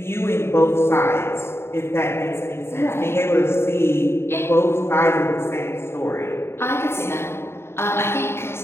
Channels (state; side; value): late; right; 0.12 ms